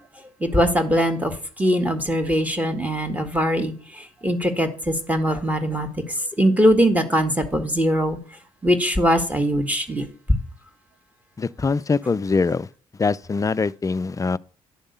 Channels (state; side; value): normal; both; correlation 0.77